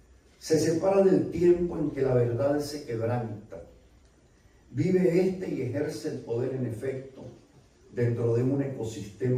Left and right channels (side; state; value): both; identical; correlation 1.00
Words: Se separa del tiempo en que la verdad se quebranta. Vive este y ejerce el poder en efecto dentro de un